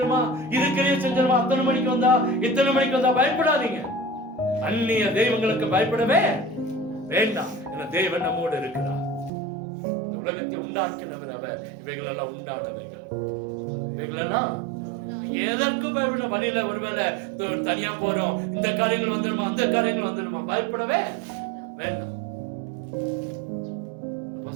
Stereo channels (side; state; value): left; drops out; at 9.3 s